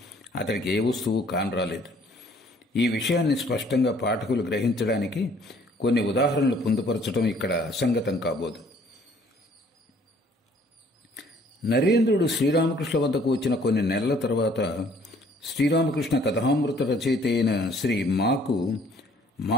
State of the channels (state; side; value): normal; both; correlation 0.59